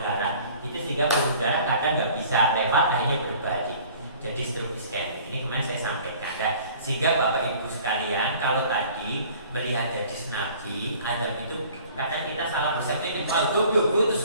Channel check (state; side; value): inverted; both; correlation -0.50